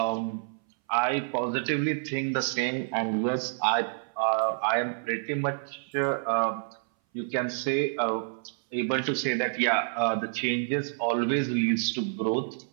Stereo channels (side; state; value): left; silent; 58 dB below the other